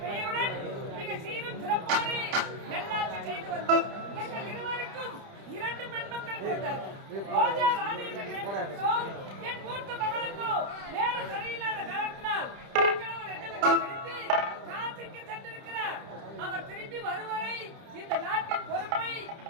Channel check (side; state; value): left; late; 30 ms